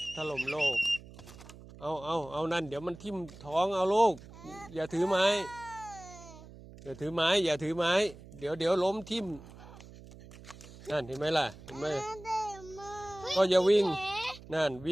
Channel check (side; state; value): right; noise; hum, 18 dB below the sound